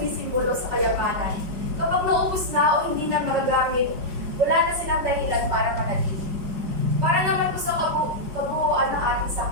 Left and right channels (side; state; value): left; late; 5.2 ms